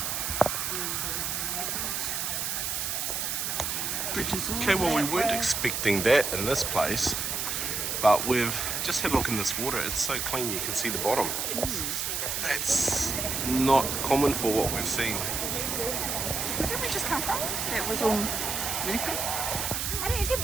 Okay, well we weren't expecting that in this place, but we've just had a look in this water. It's so clean you can see the bottom. That's not common for what we've seen. Where did we just come from? That was all really good.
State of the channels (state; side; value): noise; right; hiss, 1 dB below the sound